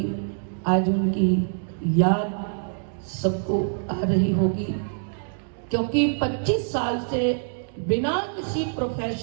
आज उनकी याद सबको आ रही होगी, क्योंकि 25 साल से बिना किसी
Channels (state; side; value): silent; left; digital silence